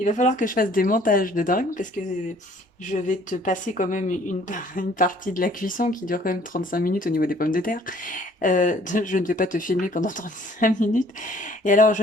va falloir que je fasse des montages de dingue, parce que je vais te passer quand même une partie de la cuisson qui dure quand même 35 minutes au niveau des pommes de terre. Je ne vais pas te filmer pendant 35 minutes. Et alors, je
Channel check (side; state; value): both; normal; correlation 0.57